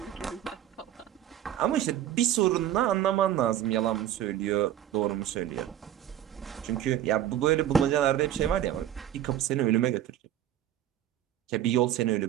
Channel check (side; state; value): left; quieter; 11.4 dB